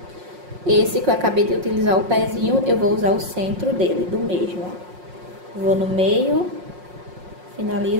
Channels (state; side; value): late; left; 5.5 ms